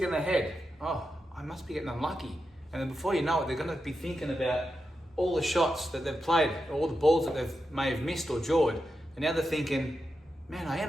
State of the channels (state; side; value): normal; both; correlation 0.88